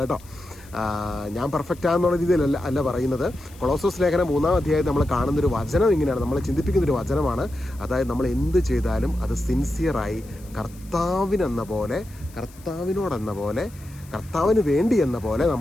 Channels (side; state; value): left; noise; hiss, 24 dB below the sound